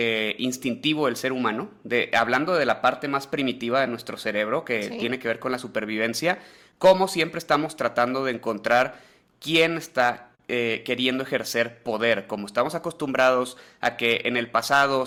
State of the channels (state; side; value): identical; both; correlation 1.00